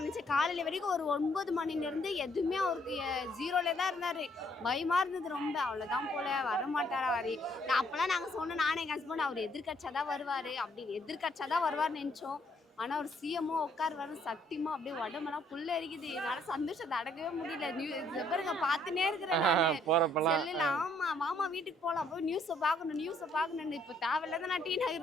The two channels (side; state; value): both; normal; correlation 0.67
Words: நினைச்சேன். காலையில வரைக்கும் ஒரு 9 மணிலேருந்து எதுவுமே அவருக்கு ஜீரோல தான் இருந்தாரு. பயமா இருந்தது ரொம்ப. அவ்வளோதான் போல வரமாட்டாரா வரி. நான் அப்பெல்லாம் நாங்கள் சொன்னோம், நானே எங்கள் ஹஸ்பண்ட் அவர் எதிர்கட்சியாதான் வருவாரு அப்படின்னு, எதிர்கட்சியாதான் வருவார்னு நினைச்சோம். ஆனா ஒரு சிஎம்ஓ உட்காருவாரு. சத்தியமா அப்படியே உடம்பெல்லாம் புல்ல எரிக்குது. என்னால சந்தோஷத்தை அடக்கவே முடியல. பாருங்க பார்த்துனே இருக்கிறேன் செல்லுல. ஆமா மாமா வீட்டுக்கு போகலாம், போய் நியூஸை பார்க்கணும். இப்போ தேவையில்லாத நான் டி